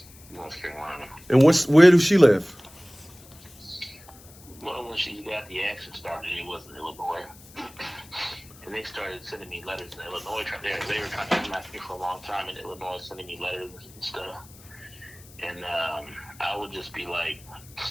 North Carolina. And where does she live? Well, when she got the action started, it was in Illinois. And they started sending me letters in Illinois. They were trying to contact me for a long time in Illinois, sending me letters and stuff. And I would just be like,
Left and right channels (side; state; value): left; noise; hiss, 22 dB below the sound